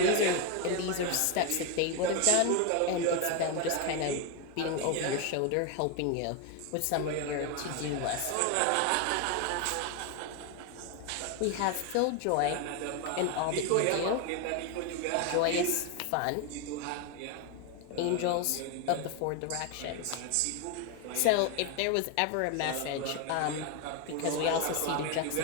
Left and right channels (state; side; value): different; both; correlation 0.01